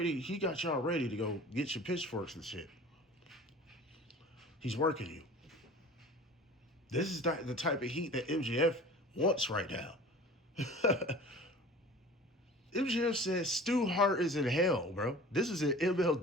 He got y'all ready to go get your pitchforks and shit. He's working you. This is the type of heat that MJF wants right now. MJF says Stu Hart is in hell, bro. This is in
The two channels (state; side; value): normal; both; correlation 0.42